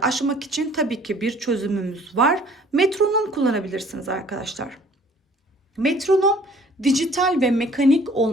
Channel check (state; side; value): normal; both; correlation 0.54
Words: aşmak için tabii ki bir çözümümüz var. Metronom kullanabilirsiniz arkadaşlar. Metronom dijital ve mekanik